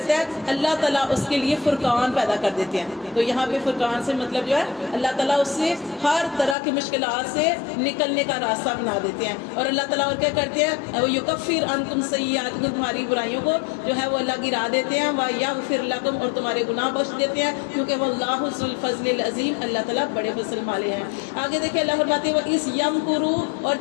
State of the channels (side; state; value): right; drops out; at 6.6 s